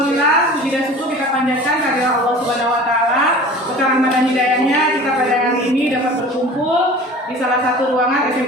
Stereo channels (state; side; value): normal; both; correlation 0.41